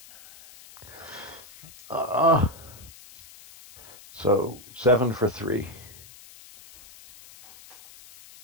So 7 for 3.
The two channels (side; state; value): left; noise; hiss, 20 dB below the sound